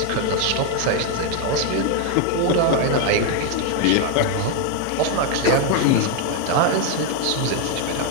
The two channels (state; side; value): different; both; correlation 0.01